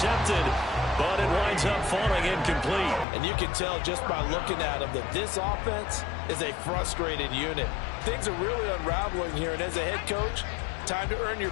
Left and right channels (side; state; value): right; drops out; at 3.1 s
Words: but it winds up falling incomplete. And you can tell just by looking at them that this offense is a frustrated unit. Things are really unraveling here, and as a head coach, time to earn your